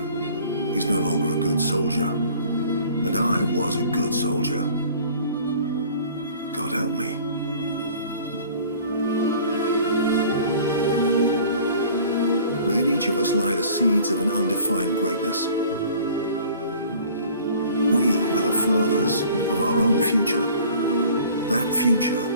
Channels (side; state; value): both; inverted; correlation -0.49